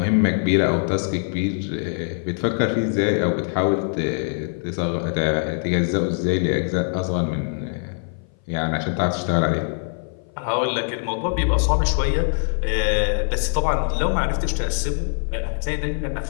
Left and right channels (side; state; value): right; silent; 58 dB below the other